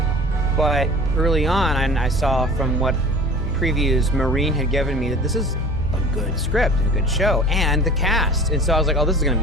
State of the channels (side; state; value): both; normal; correlation 0.41